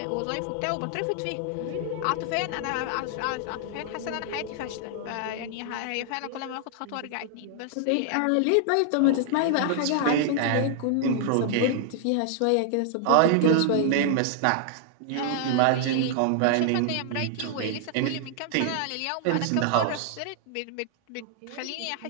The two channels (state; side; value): different; both; correlation 0.00